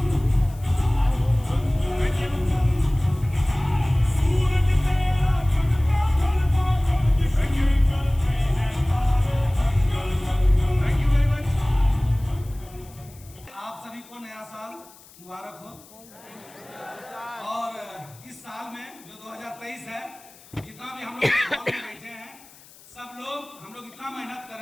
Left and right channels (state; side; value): noise; left; hiss, 23 dB below the sound